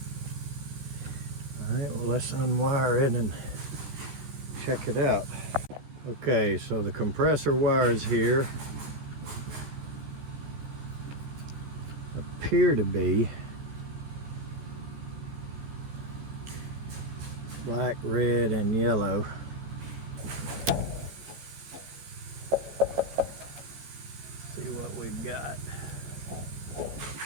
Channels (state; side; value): late; left; 14 ms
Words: Alright, well, let's unwire it and check it out. Okay, so the compressor wires here appear to be black, red, and yellow. See what we've got.